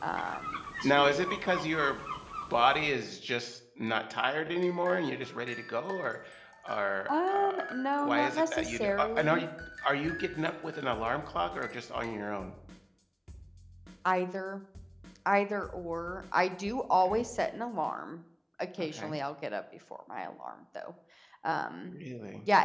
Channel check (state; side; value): identical; both; correlation 1.00